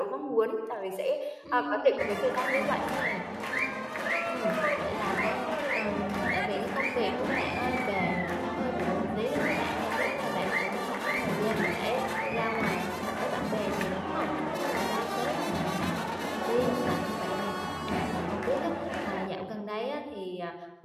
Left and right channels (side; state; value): both; identical; correlation 1.00